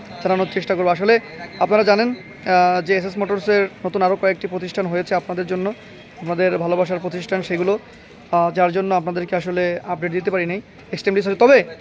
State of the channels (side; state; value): both; identical; correlation 1.00